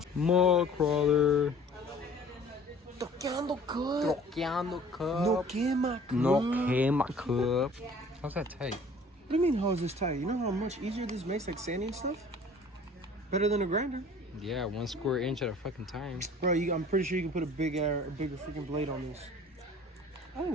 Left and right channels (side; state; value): both; normal; correlation 0.50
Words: Mall crawler. Toqueando cup. Troqueando cup. No quema cup. No quema cup. How's that tight? What do you mean, how is this tight? You know how much easier this makes, like, sanding stuff? Better than a grinder. Yeah, 1 square inch at a fucking time. Bro, I'm pretty sure you can put a bigger freaking blade on this. I think